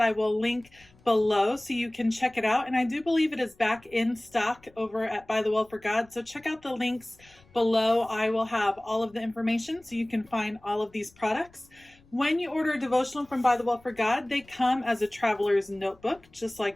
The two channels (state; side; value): noise; left; rumble, 29 dB below the sound